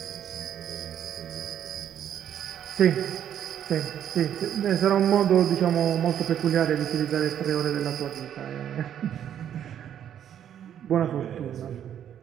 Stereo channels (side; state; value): left; quieter; 9.8 dB